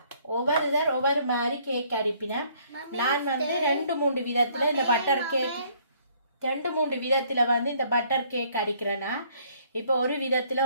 ஒவ்வொரு மாதிரி கேக் அரிப்பினேன். நான் வந்து 2-3 விதத்தில் இந்த பட்டர் கேக் 2-3 விதத்தில் வந்து இந்த பட்டர் கேக் அடிக்கிறேன்னா, இப்போ ஒரு விதத்தில்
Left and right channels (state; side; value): inverted; both; correlation -0.63